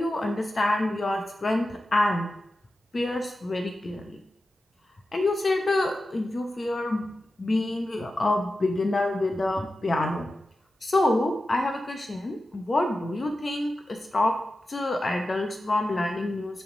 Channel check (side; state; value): both; normal; correlation 0.92